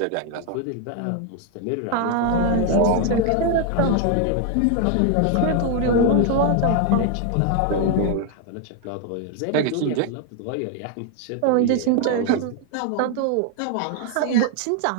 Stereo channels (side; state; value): both; different; correlation 0.01